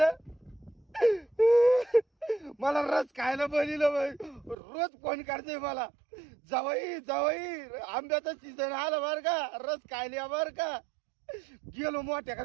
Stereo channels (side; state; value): left; drops out; at 4.5 s